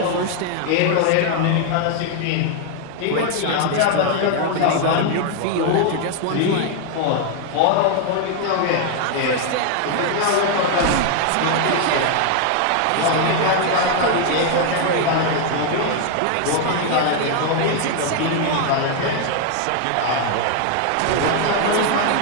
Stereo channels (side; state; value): both; different; correlation 0.00